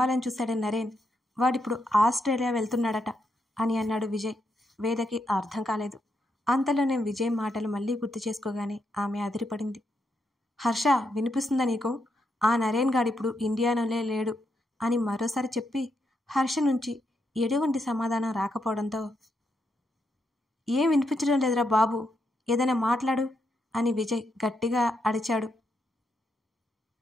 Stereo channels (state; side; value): normal; both; correlation 0.81